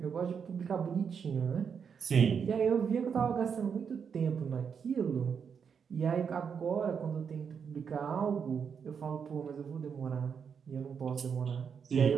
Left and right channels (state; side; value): quieter; left; 6.7 dB